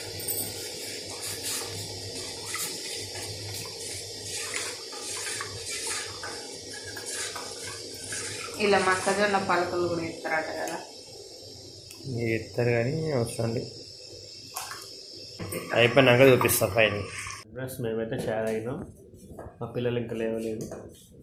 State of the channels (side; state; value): both; identical; correlation 1.00